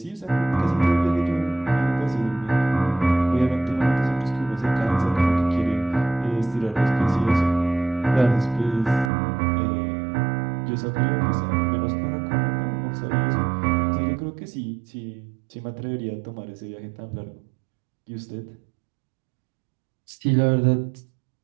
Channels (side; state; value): left; drops out; at 9.1 s